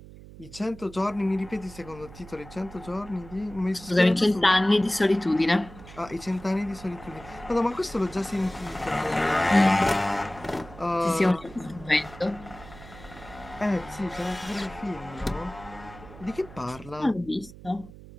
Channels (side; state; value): right; noise; hum, 17 dB below the sound